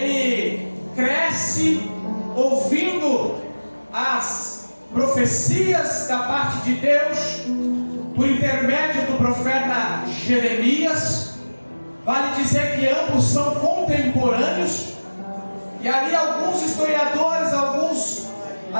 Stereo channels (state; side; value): inverted; both; correlation -1.00